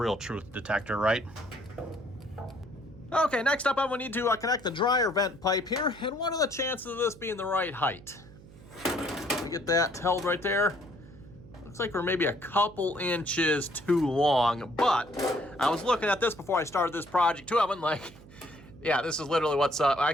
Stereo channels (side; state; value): right; noise; hum, 20 dB below the sound